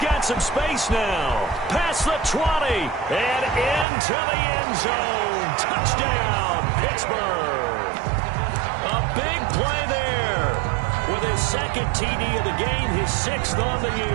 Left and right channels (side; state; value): left; drops out; at 3.9 s